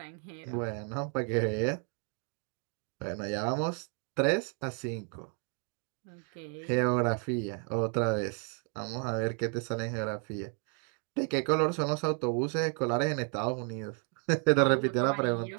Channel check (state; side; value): quieter; left; 37.8 dB